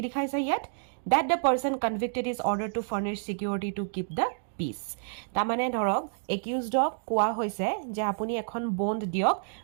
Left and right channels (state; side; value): silent; left; digital silence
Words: দেখাইছে ইয়াত that the person convicted is ordered to furnish security to keep the peace তাৰমানে ধৰক একিউজডক কোৱা হৈছে যে আপুনি এখন বণ্ড দিয়ক